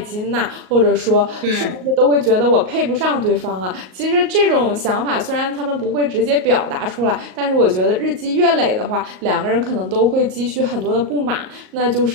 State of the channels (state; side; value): late; left; 38 ms